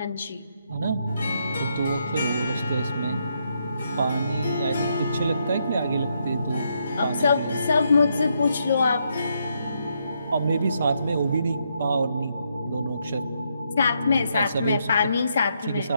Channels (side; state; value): both; inverted; correlation -0.78